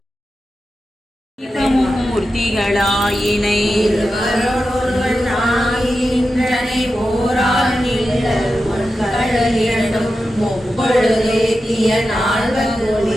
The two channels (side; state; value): both; normal; correlation 0.91